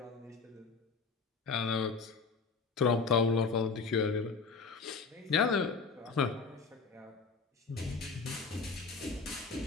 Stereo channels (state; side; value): quieter; right; 4.8 dB